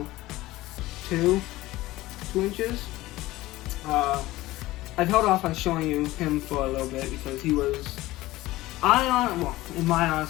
2 inches. I've held off on showing you him for a little bit because he was, in my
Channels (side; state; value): right; quieter; 17.7 dB